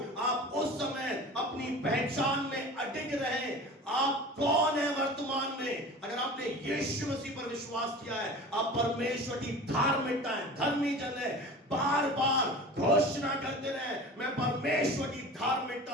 आप उस समय अपनी पहचान में अडिग रहे। आप कौन है वर्तमान में? अगर आपने यीशु मसीह पर विश्वास किया है, आप परमेश्वर की धार्मिकता है, धर्मी जन है, बार बार घोषणा करते रहे, मैं परमेश्वर की धार्मिकता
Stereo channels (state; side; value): normal; both; correlation 0.37